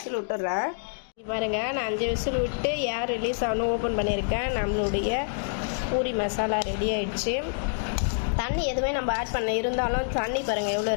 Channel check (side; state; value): right; silent; digital silence